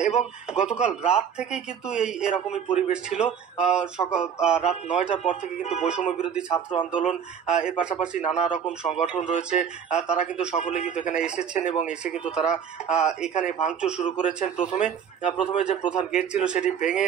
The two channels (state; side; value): quieter; left; 7.7 dB